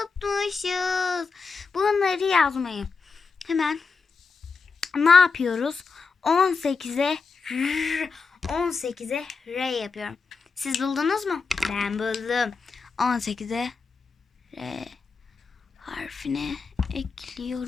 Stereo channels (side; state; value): right; quieter; 4.9 dB